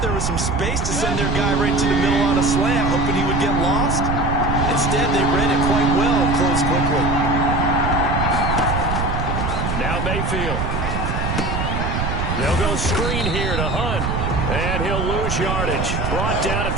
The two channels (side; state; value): right; noise; rumble, 1 dB below the sound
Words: there was some space to send their guy right into the middle on a slant, hoping he would get lost. Instead, they read it quite well and closed quickly. Now Mayfield. They'll go screen here to Hunt. And he'll lose yardage. Brought down at